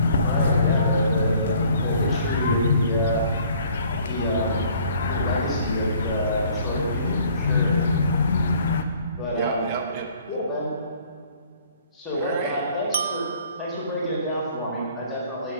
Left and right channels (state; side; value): inverted; both; correlation -0.57